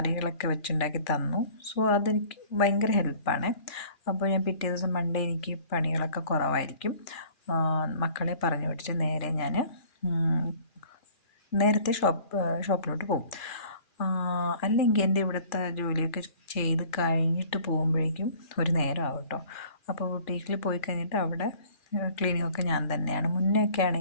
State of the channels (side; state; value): right; late; 2.4 ms